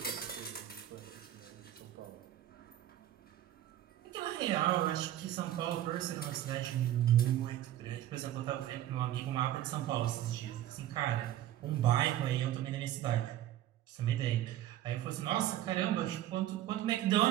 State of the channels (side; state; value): left; quieter; 12.7 dB